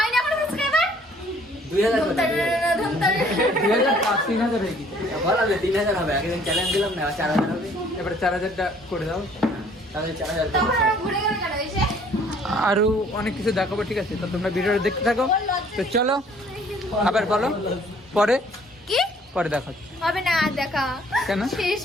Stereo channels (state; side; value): normal; both; correlation 0.58